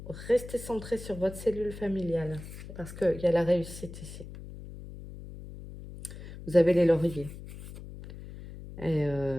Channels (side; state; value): left; noise; hum, 13 dB below the sound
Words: Restez centré sur votre cellule familiale. Parce qu'il y a la réussite ici. Vous avez les lauriers. Et